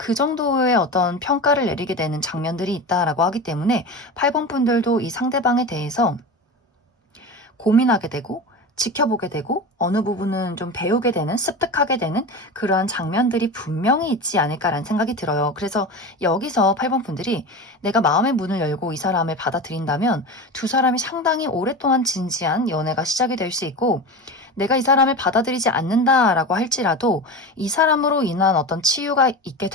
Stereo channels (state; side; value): normal; both; correlation 0.27